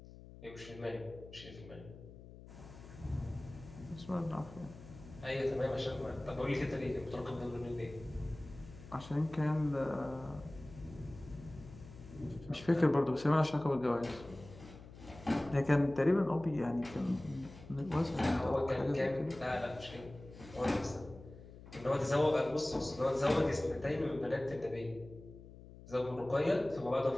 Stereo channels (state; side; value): noise; left; hum, 17 dB below the sound